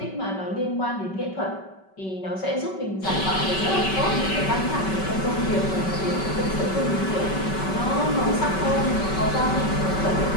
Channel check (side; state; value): right; late; 5.3 ms